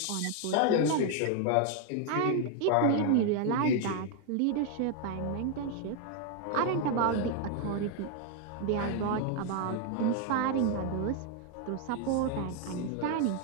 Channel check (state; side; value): different; both; correlation 0.00